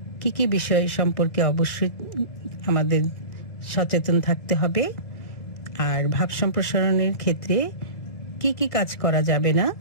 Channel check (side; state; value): right; late; 1.9 ms